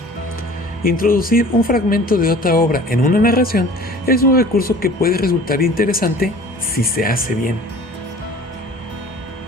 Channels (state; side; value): normal; both; correlation 0.45